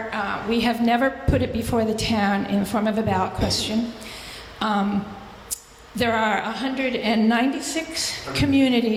We have never put it before the town in the form of a ballot question. There are 196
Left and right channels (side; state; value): both; identical; correlation 1.00